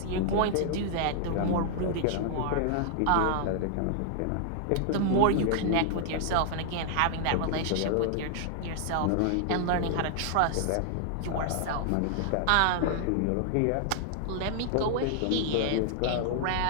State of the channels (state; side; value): different; both; correlation -0.01